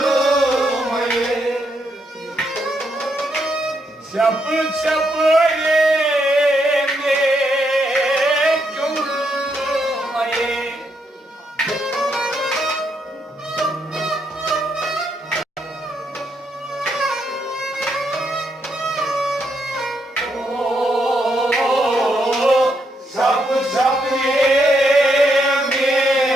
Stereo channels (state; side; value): normal; both; correlation 0.78